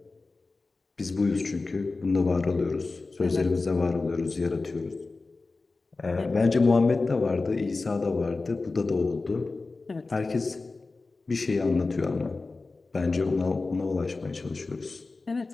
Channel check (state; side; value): quieter; right; 3.7 dB